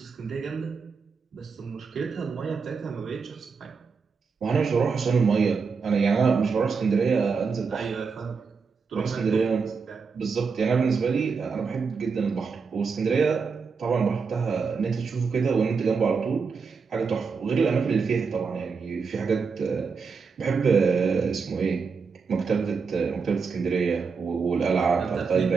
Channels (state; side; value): quieter; left; 5.3 dB